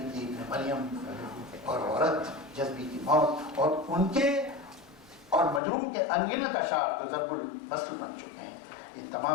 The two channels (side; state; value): right; drops out; at 5.6 s